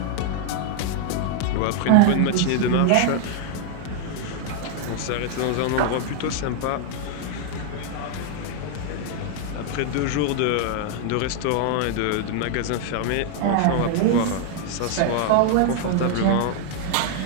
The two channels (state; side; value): different; both; correlation 0.00